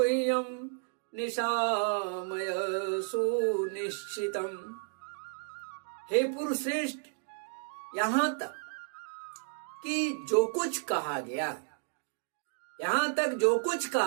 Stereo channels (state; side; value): silent; left; 56 dB below the other